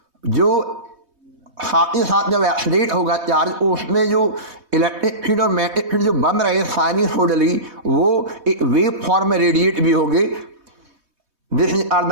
जो साथ ही साथ जब एक्सेलरेट होगा चार्ज, उसमें जो इलेक्ट्रिक फील्ड और मैग्नेटिक फील्ड जो बन रहे हैं साइनसॉइडली, वो एक वेव फॉर्म में रेडिएट भी होंगे। दिस आर द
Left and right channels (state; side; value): late; left; 3.2 ms